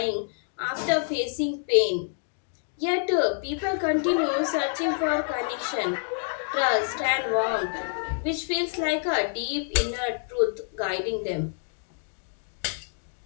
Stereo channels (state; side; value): silent; right; digital silence